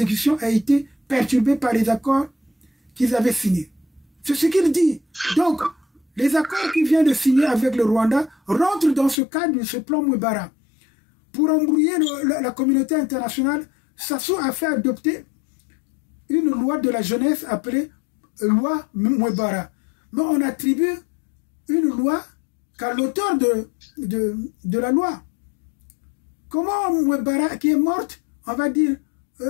a été perturbée par les accords qu'ils avaient signés. C'est ce qu'il dit. Donc, les accords qu'il vient de signer avec le Rwanda rentrent dans ce cadre de ce plan Mwebara. Pour embrouiller la communauté internationale, Sassou a fait adopter une loi de la jeunesse appelée loi Mwebara. Mais on attribue une loi qu'à l'auteur de la loi. Comment Mwebara, qui est morte, on va dire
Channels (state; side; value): drops out; right; at 9.2 s